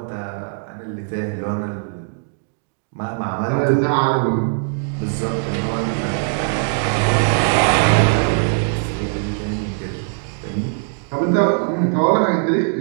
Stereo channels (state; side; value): silent; left; 66 dB below the other